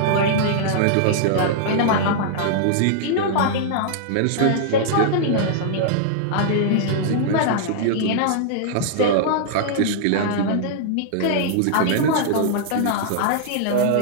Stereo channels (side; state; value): both; different; correlation -0.01